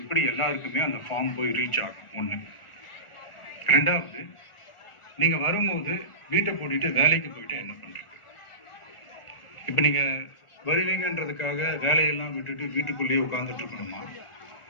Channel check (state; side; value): late; right; 1.4 ms